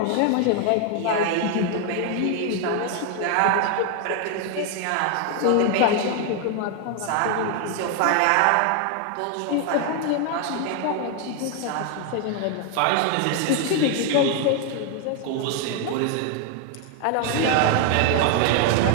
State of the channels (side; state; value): both; different; correlation 0.01